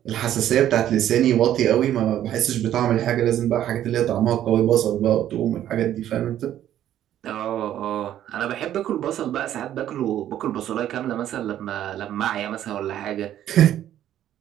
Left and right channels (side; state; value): left; quieter; 11.6 dB